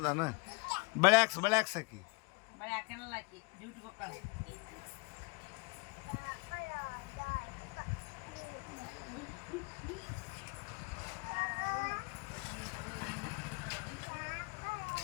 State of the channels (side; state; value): right; quieter; 29.4 dB